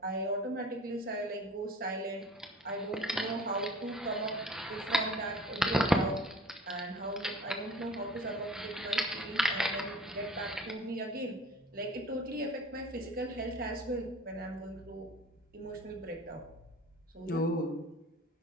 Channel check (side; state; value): both; normal; correlation 0.44